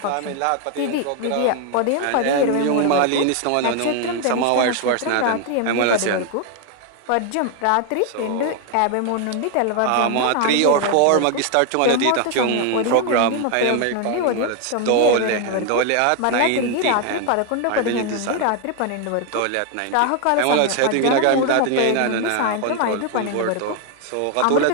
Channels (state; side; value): different; both; correlation 0.01